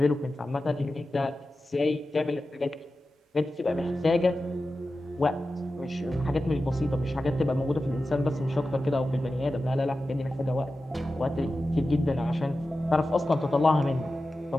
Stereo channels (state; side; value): normal; both; correlation 0.93